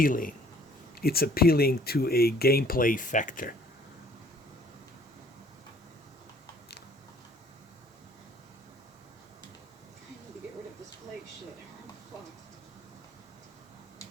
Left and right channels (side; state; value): both; normal; correlation 0.57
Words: It's appealing to a gameplay factor. I need to get rid of this plague shit. I'm fucked.